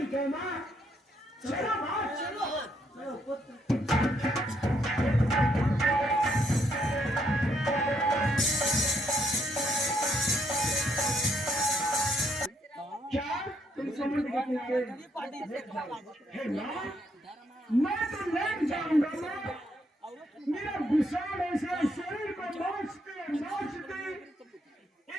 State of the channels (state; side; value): normal; both; correlation 0.73